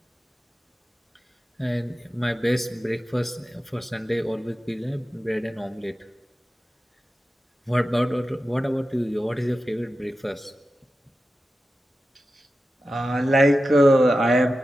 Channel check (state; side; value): normal; both; correlation 0.92